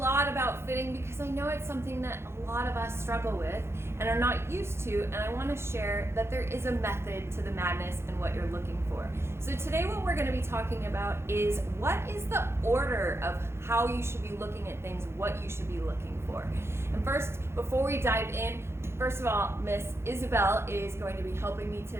about fitting because I know it's something that a lot of us struggle with and are not used to, and I want to share that there is a method to the madness and what you're looking for. So today what we're going to be talking about is what is the order of how you should be looking at things, what you should be looking for. And first, before we dive in, first of all, Miss Isabel is going to be helping me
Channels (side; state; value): left; late; 0.12 ms